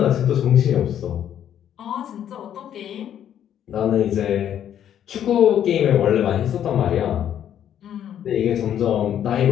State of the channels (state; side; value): quieter; right; 10.1 dB